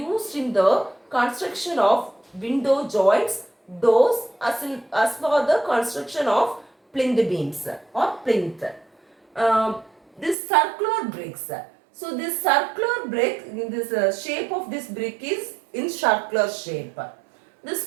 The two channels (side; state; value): left; drops out; at 10.4 s